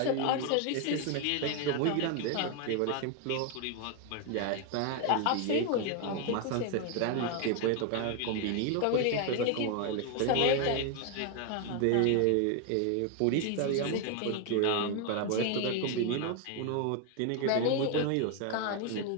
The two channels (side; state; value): both; different; correlation 0.01